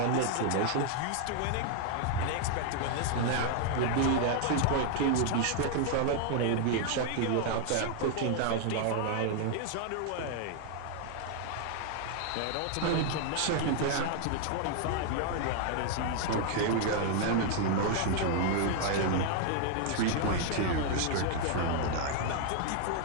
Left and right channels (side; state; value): both; different; correlation 0.00